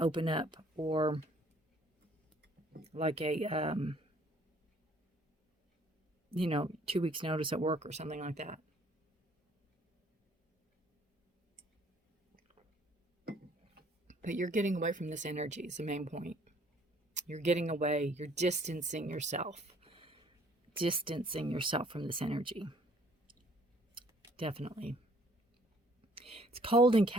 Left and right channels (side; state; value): both; normal; correlation 0.60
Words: open up, or like a 2 weeks notice at work or something like that. But you're getting away from this energy is the main point. You're getting away. You're distancing yourself. Distancing yourself from this energy. Definitely. It's cold and